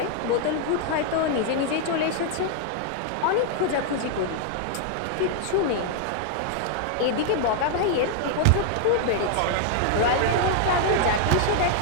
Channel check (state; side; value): different; both; correlation 0.00